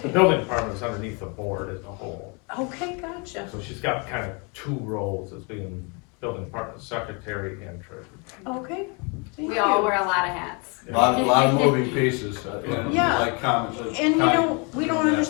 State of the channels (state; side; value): quieter; right; 32.9 dB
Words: The building department is underneath the board as a whole, Okay, gotcha. so she's got kind of 2 roles as being building department secretary and treasurer. Okay, thank We you. all wear a lot of hats. A lot of moving pieces, and Yeah. like comments. And you know, we don't